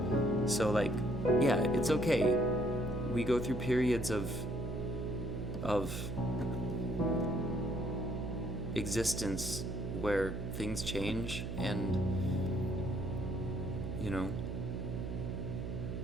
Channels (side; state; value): right; noise; hum, 4 dB below the sound